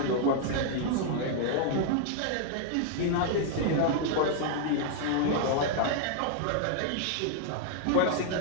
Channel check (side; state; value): both; different; correlation -0.01